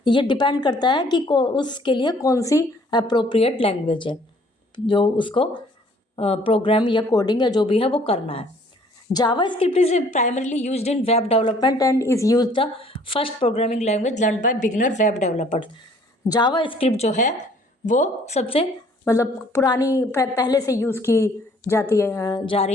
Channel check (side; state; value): both; normal; correlation 0.58